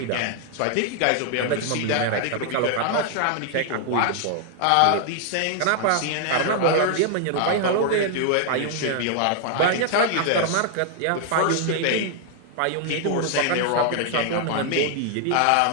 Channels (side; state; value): both; different; correlation 0.00